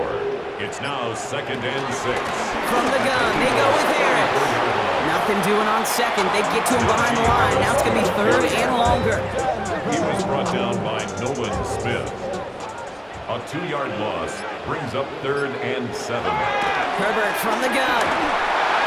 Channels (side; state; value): both; identical; correlation 1.00